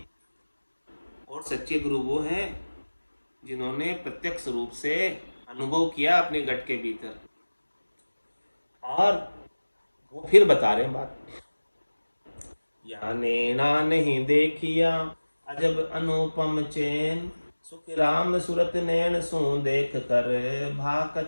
और सच्चे गुरु वो हैं जिन्होंने प्रत्यक्ष रूप से अनुभव किया अपने घट के भीतर, और वो फिर बता रहे हैं बात। या नैना नहीं देखिया अजब अनुपम चैन, सुख राम सूरत नैन सो देख कर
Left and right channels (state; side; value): inverted; both; correlation -1.00